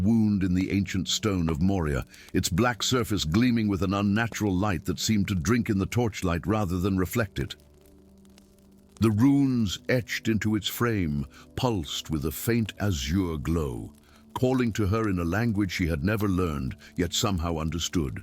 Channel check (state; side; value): identical; both; correlation 1.00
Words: in the ancient stone of Moria, its black surface gleaming with an unnatural light that seemed to drink in the torchlight rather than reflect it. The runes etched into its frame pulsed with a faint azure glow, calling to her in a language she had never learned, yet somehow understood.